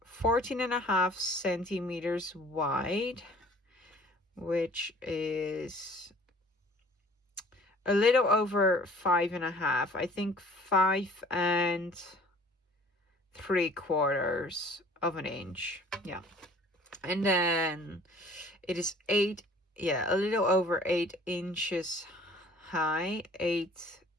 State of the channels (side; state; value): both; normal; correlation 0.51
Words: 14.5 centimeters wide, which is a little over 5.5. I think 5 3/4 of an inch. Yeah. And then it is a little over 8 inches high, 8